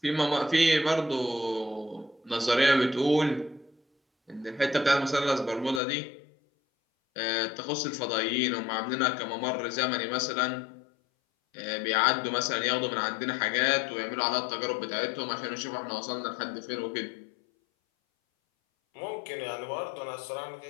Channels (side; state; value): right; drops out; at 5.8 s